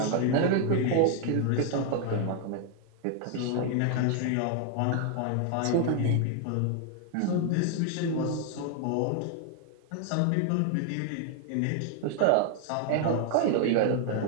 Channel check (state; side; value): different; both; correlation 0.00